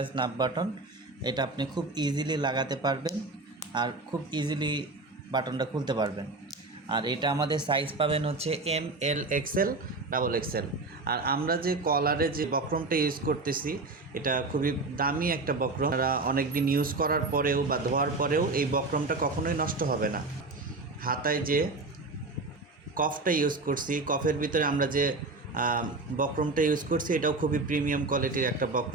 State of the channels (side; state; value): left; quieter; 3.4 dB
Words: স্ন্যাপ বাটন। এটা আপনি খুব ইজিলি লাগাতে পারবেন আর খুব ইজিলি বাটনটা খুলতে পারবেন। আর এটা আমাদের সাইজ পাবেন হচ্ছে এম, এল, এক্সেল, ডাবল এক্সেল। আর আমরা যে কলারে যে বক্রমটা ইউজ করতেছি এটা খুবই দামি একটা বক্রম। আমরা অনেক দিন ইউজ করার পরেও বা ধোয়ার পরেও এই বক্রমটা কখনোই নষ্ট হবে না। হাতায় যে কফটা ইউজ করছি, কফের ভিতরে আমরা যে বক্রমটা ইউজ করছি এটাও খুবই প্রিমিয়াম কোয়ালিটির একটা